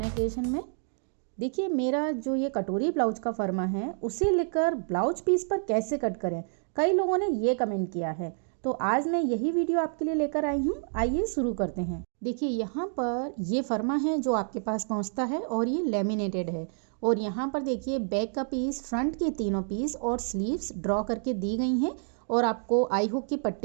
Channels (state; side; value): silent; left; 59 dB below the other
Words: क्रिएशन में। देखिए मेरा जो ये कटोरी ब्लाउज का फर्मा है उसे लेकर ब्लाउज पीस पर कैसे कट करें, कई लोगों ने ये कमेंट किया है। तो आज मैं यही वीडियो आपके लिए लेकर आई हूँ। आइए शुरू करते हैं। देखिए यहाँ पर ये फर्मा है जो आपके पास पहुँचता है और ये लेमिनेटेड है। और यहाँ पर देखिए बैक का पीस, फ्रंट के तीनों पीस और स्लीव्स ड्रॉ करके दी गई हैं। और आपको आई हुक की